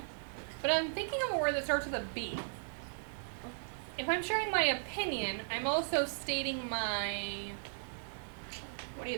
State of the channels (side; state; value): left; silent; digital silence